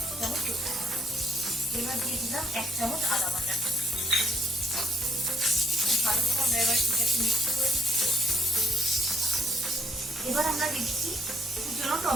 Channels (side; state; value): both; normal; correlation 0.68